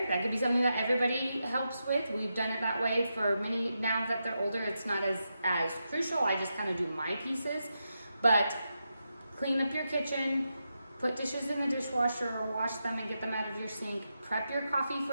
That could be something that everybody helps with. We've done it that way for many. Now that they're older, it's not as crucial. I just kind of do my pieces. But clean up your kitchen, put dishes in the dishwasher or wash them and get them out of your sink. Prep your coffee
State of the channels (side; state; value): both; inverted; correlation -0.87